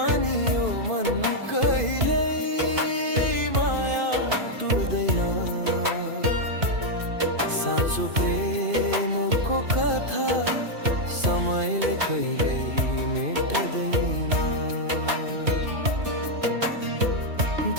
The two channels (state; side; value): late; left; 2.5 ms